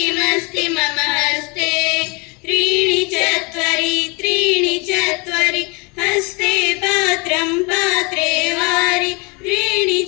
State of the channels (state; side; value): quieter; right; 29.6 dB